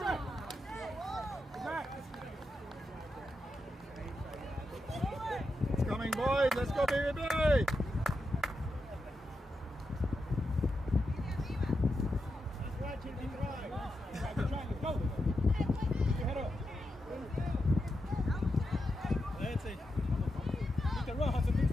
try. It's coming, boys. Let's go, baby.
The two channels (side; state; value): both; normal; correlation 0.87